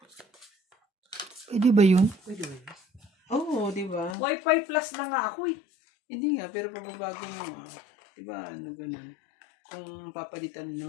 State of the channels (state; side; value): drops out; right; at 4.2 s